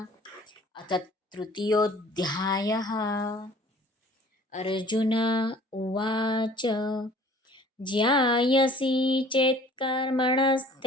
અથ તૃતીયોધ્યાયઃ. અર્જુન ઉવાચ જ્ઞાયસી ચેત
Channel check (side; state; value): both; normal; correlation 0.52